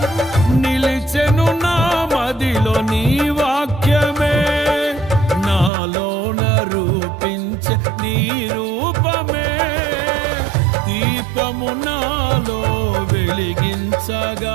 నిలిచెను నా మదిలో నీ వాక్యమే, నాలోన రూపించే నీ రూపమే. దీపము నాలో వెలిగించగా,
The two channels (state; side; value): drops out; left; at 5.7 s